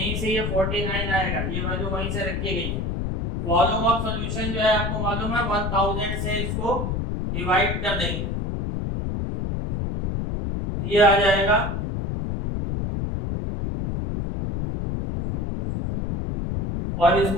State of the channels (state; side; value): noise; left; rumble, 2 dB below the sound